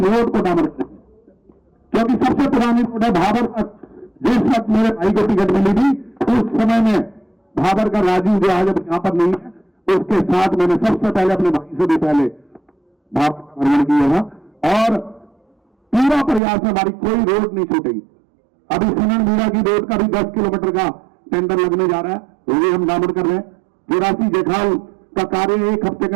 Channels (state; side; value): drops out; left; at 16.4 s